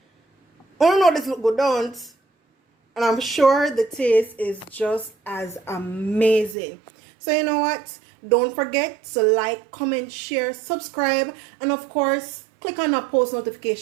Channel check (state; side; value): drops out; left; at 6.6 s